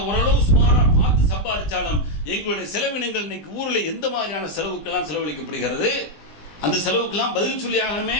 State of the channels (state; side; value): late; right; 20 ms